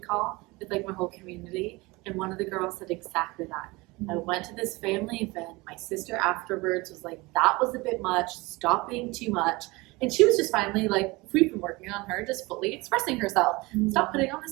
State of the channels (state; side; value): quieter; left; 23.3 dB